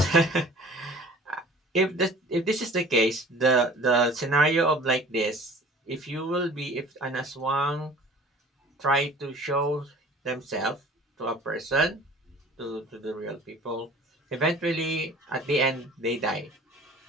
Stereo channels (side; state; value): both; normal; correlation 0.46